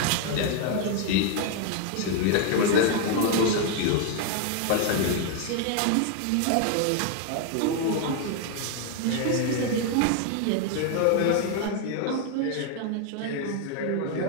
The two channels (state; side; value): different; both; correlation 0.01